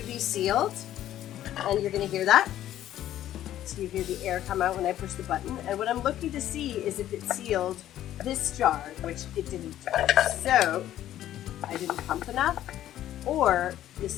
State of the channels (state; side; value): quieter; right; 12.5 dB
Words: be sealed. And you're going to hear that. So you hear the air come out when I push the button. And what I'm looking to see is if it sealed this jar, which it didn't. So I didn't pump enough, or this